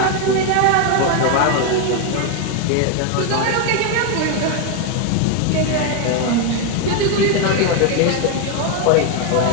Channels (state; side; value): different; both; correlation 0.01